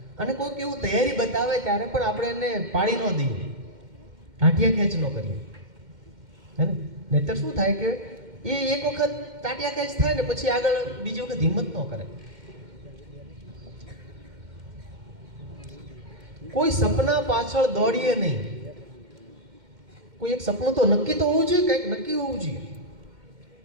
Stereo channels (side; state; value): left; late; 2.1 ms